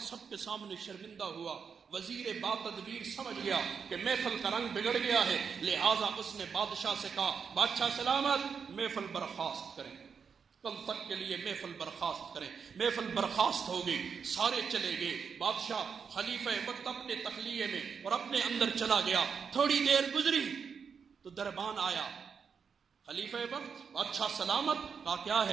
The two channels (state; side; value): quieter; left; 6.3 dB